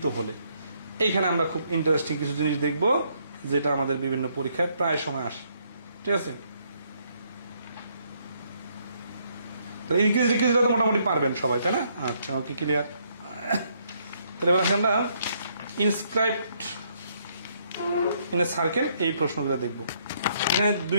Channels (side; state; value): both; inverted; correlation -0.71